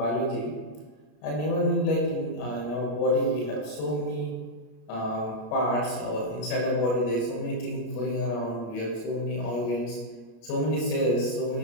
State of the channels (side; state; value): right; late; 33 ms